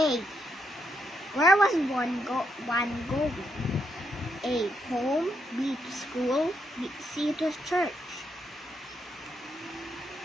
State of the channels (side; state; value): both; normal; correlation 0.79